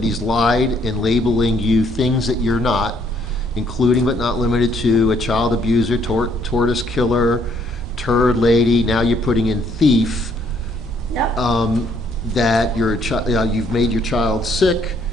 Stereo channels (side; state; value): both; normal; correlation 0.67